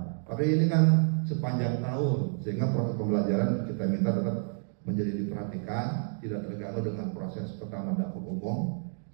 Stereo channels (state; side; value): silent; left; 58 dB below the other